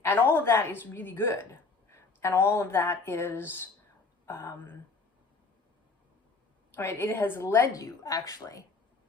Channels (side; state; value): right; quieter; 4.2 dB